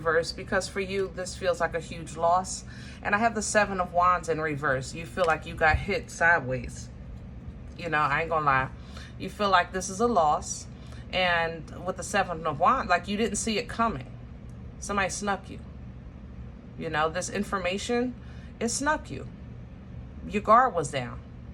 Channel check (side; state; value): both; identical; correlation 1.00